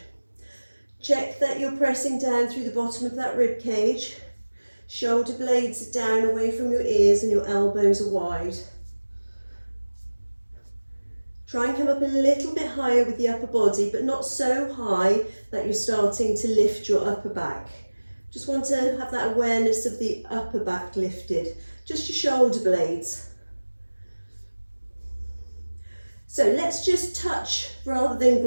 Check that you're pressing down through the bottom of that rib cage. Shoulder blades are down away from your ears and your elbows are wide. Try and come up a little bit higher with the upper body, but not so high that you're starting to lift your upper back. Just want to have that awareness of the upper back lifted, just your shoulder blades. So let's just touch rather than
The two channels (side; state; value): both; inverted; correlation -1.00